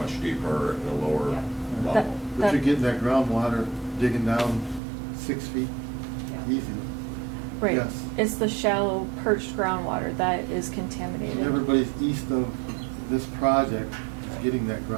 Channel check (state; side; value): drops out; left; at 4.8 s